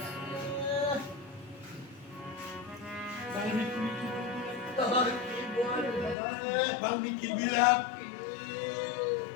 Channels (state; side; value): drops out; right; at 6.2 s